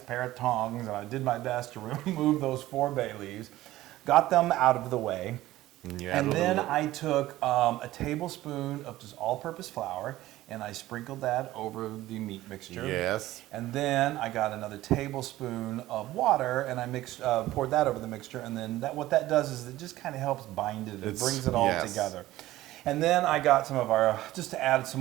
pair of tongs and I did my best to remove those 4 bay leaves, got them out of the way. Yeah. And then I took a tablespoon of just all-purpose flour and I sprinkled that over the meat mixture. Yes. And then I got another tablespoon of water and I poured that over the mixture. And then what that does is it just kind of helps bind it. It brings it all yes. together. And then I got some of our, just to add some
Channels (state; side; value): quieter; left; 15.9 dB